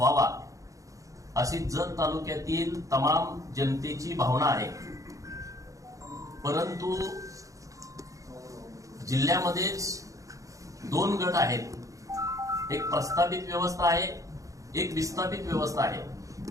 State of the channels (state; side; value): late; left; 0.16 ms